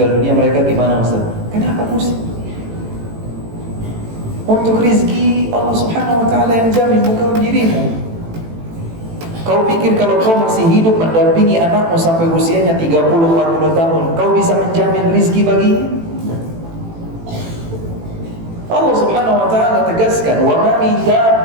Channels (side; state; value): left; late; 18 ms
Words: dunia, mereka gimana Ustaz? Kenapa pusing? Untuk rizki Allah Subhanahu wa Ta'ala yang jamin, bukan dirimu. Kau pikir kalau kau masih hidup mendampingi anakmu sampai usianya 30-40 tahun, kau bisa menjamin rizki baginya? Allah Subhanahu wa Ta'ala tegaskan, wa ma min